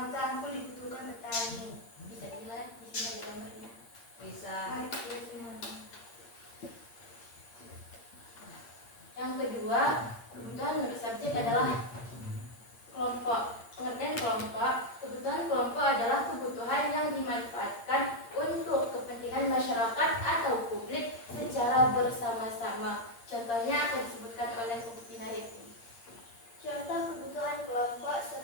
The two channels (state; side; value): late; right; 8.7 ms